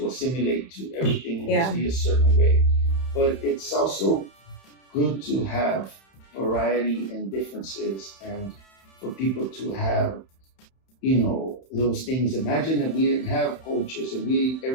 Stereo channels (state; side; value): late; right; 31 ms